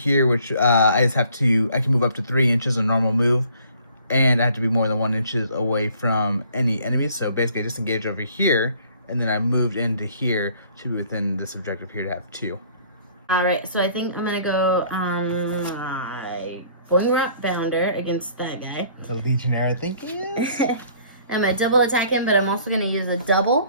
which I can move up to 3 inches, a normal move. And I have to be more than 1 inch away from any enemies. So basically I disengaged over here, and then I moved into here to be within this objective here to have 2. Alright, so I think I'm going to go on my Boingrot Bounder against that guy. The Legionary, I think it is. I'm going to double attack him, but I'm also going to use a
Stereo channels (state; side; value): inverted; both; correlation -0.57